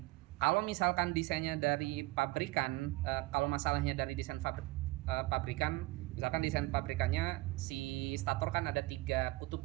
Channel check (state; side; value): quieter; left; 20.6 dB